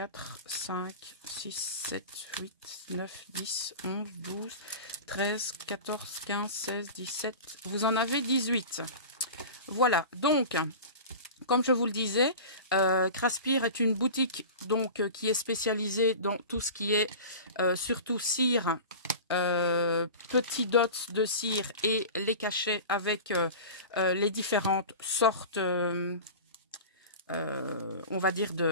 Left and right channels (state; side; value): inverted; both; correlation -0.34